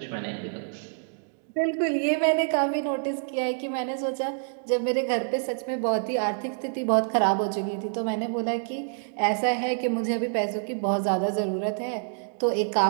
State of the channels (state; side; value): silent; left; digital silence